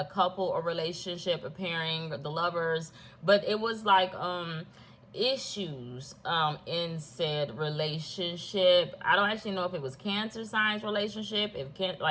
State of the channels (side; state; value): both; identical; correlation 1.00